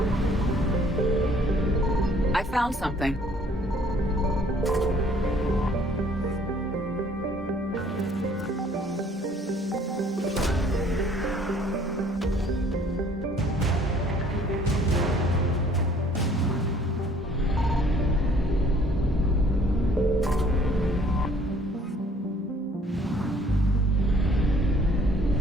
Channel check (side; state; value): both; normal; correlation 0.58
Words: I found something.